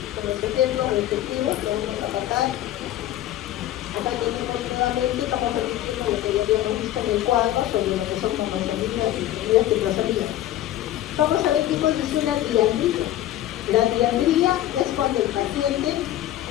con los ejemplos respectivos lo vamos a tratar. Acá tenemos nuevamente, estamos repitiendo lo que ya habíamos visto en el cuadro sobre lo que son cromosomías y ciclosomías. Vamos a ver qué cosa es una diandría. La diandría es cuando el paciente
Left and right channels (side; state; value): right; quieter; 13.5 dB